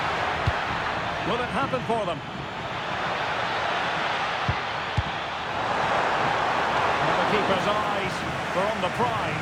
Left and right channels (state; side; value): identical; both; correlation 1.00